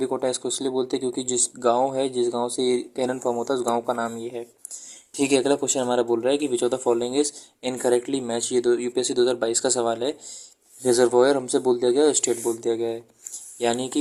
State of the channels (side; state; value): both; identical; correlation 1.00